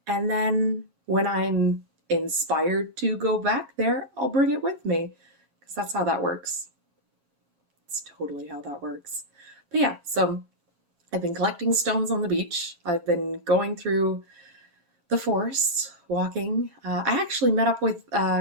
And then when I'm inspired to go back there, I'll bring it with me because that's how that works. It's totally how that works. But yeah, so I've been collecting stones on the beach. I've been going through the forest, walking. I actually met up with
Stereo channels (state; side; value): late; left; 7.3 ms